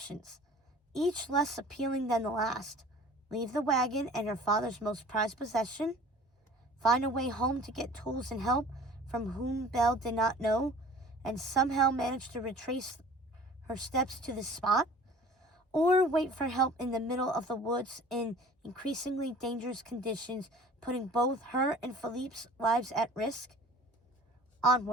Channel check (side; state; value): both; normal; correlation 0.46